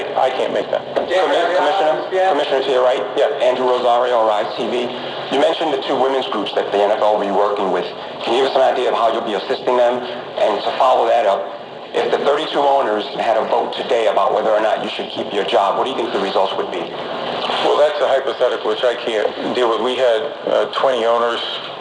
I can't make that. Commissioner, to your right, Andrew Rosario, Rise TV. You mentioned the two women's groups that the NFL will be working with. Can you give us an idea of how you'll be assisting them? And to follow that up, if the 32 owners had a vote today about whether or not you should keep your job, what do you think the results would be? Well, that's a hypothetical which I can't deal with. We had 20 owners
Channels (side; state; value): both; identical; correlation 1.00